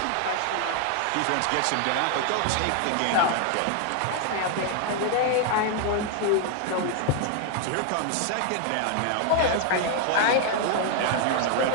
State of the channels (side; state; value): both; different; correlation 0.00